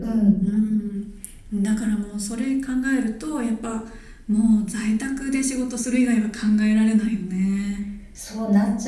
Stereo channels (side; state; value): both; identical; correlation 1.00